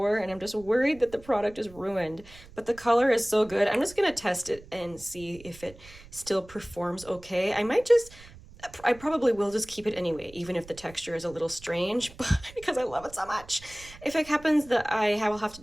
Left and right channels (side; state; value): right; noise; rumble, 20 dB below the sound